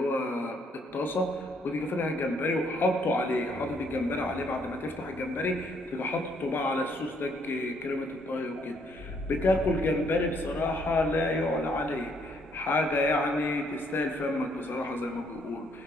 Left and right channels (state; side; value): normal; both; correlation 0.68